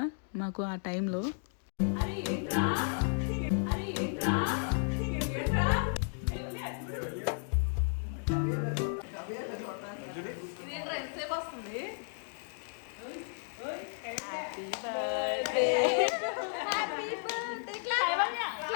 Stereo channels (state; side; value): silent; right; digital silence